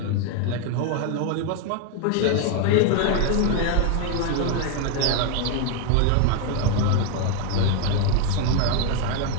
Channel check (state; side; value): different; both; correlation 0.01